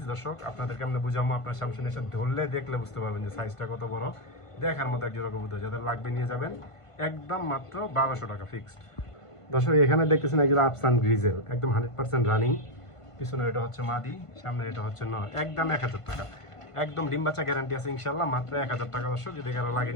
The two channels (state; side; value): late; right; 1.5 ms